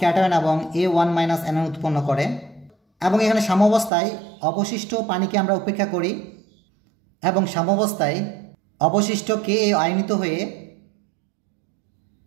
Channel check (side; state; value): left; drops out; at 3.9 s